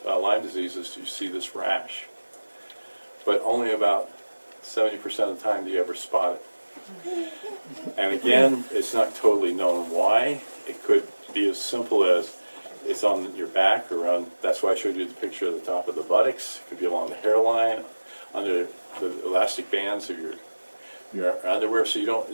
Lyme disease is you see this rash. But only about 70% of the time do you ever spot it. And again, it's not totally known why. It could be as simple as it's on your back or on, that's why I showed you the picture of the top of the buttocks. It could be along the hairline, under the elastic bands of your underwear, so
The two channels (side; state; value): both; inverted; correlation -1.00